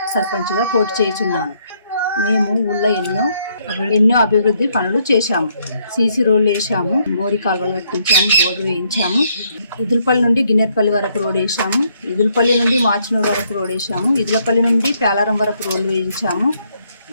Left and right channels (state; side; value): inverted; both; correlation -0.72